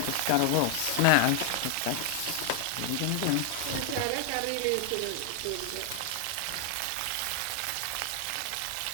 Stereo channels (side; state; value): both; different; correlation 0.00